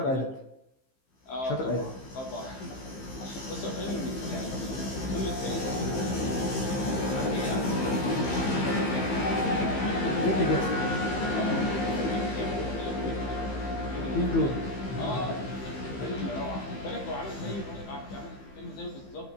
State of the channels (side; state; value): right; late; 15 ms